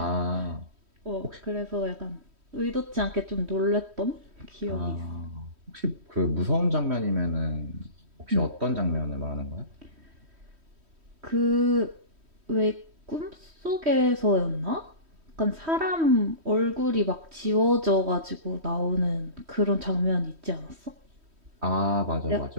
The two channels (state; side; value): late; left; 3.1 ms